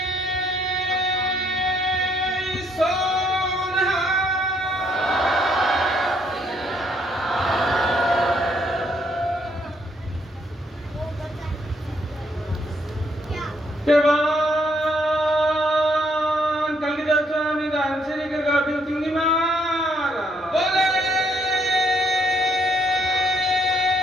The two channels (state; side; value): normal; both; correlation 0.70